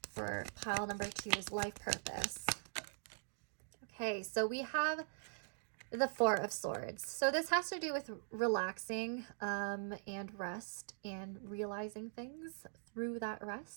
for pile number 2's life purpose. Okay, so we have the Four of Swords. So this has to do with relaxing and rest and realizing things through that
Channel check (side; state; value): left; silent; digital silence